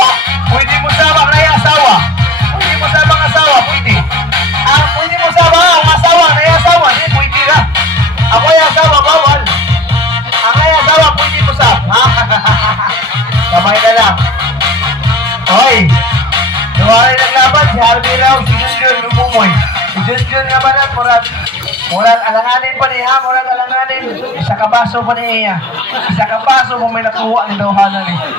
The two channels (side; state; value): both; normal; correlation 0.40